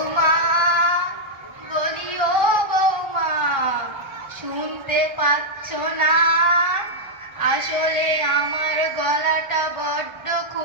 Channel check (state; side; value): late; left; 1.3 ms